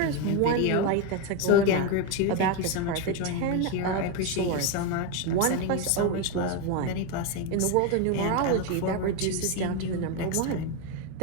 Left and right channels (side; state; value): both; different; correlation 0.03